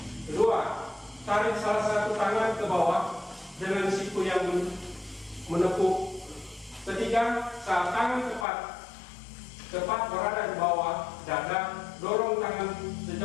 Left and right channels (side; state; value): right; drops out; at 8.5 s